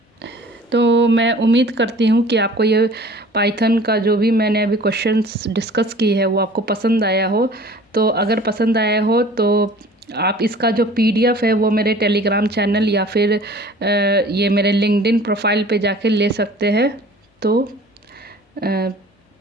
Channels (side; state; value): both; normal; correlation 0.47